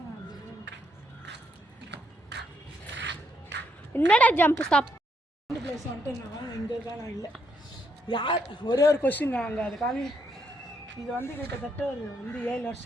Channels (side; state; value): both; normal; correlation 0.75